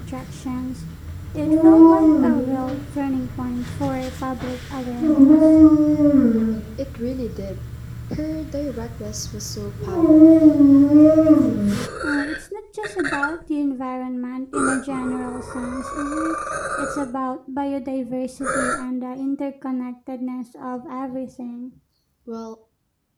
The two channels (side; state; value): both; identical; correlation 1.00